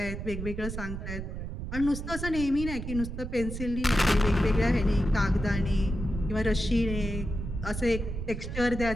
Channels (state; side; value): noise; right; rumble, 6 dB below the sound